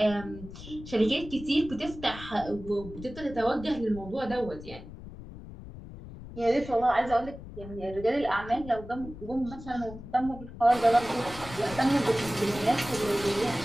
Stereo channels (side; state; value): left; noise; rumble, 14 dB below the sound